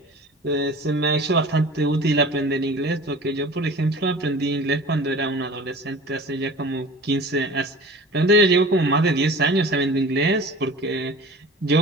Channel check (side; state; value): both; normal; correlation 0.40